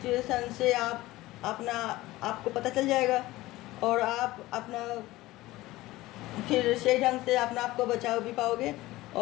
से आपको पता चल जाएगा, और आप अपना फिर सही ढंग से अपना आपको बचाव भी पाओगे।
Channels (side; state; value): right; quieter; 18.0 dB